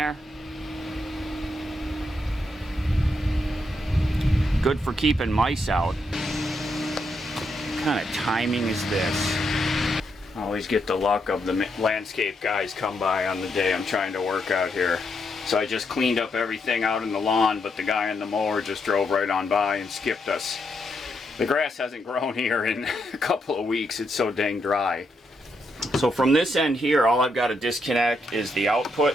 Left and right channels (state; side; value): normal; both; correlation 0.80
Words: Good for keeping mice out. What kind of timing is this? I always get the luck of the landscape guys come by on the day I'm trying to work out here. So I just cleaned up everything out in the lawn, but the guy on the mower just drove right on by and skipped us. The grass hasn't grown here in a couple of weeks. It's so dang dry. So from this end here, all I've got to disconnect is the output